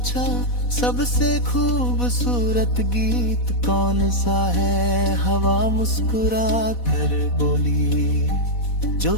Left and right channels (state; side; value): late; right; 4.1 ms